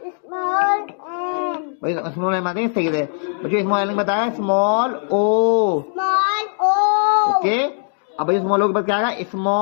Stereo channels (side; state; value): right; silent; 63 dB below the other